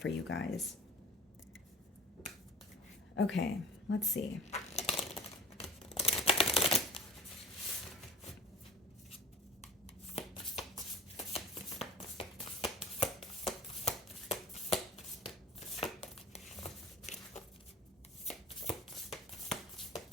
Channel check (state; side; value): normal; both; correlation 0.42